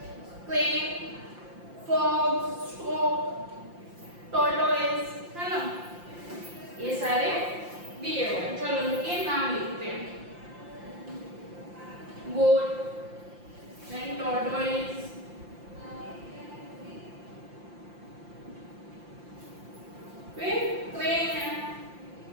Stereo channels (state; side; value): late; left; 5.8 ms